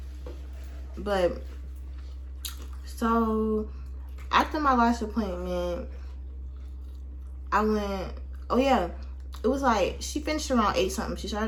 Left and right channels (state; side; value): identical; both; correlation 1.00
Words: But so after my lash appointment, I went. Oh yeah, it was like she finished around 8 something. She